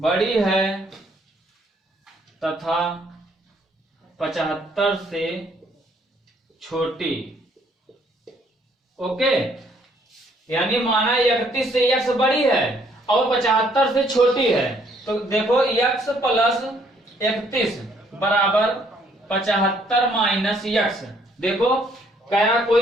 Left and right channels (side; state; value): both; normal; correlation 0.66